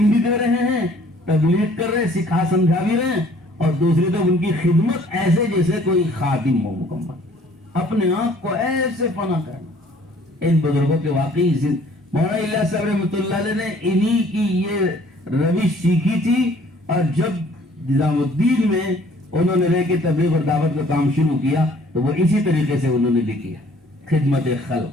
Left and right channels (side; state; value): both; normal; correlation 0.57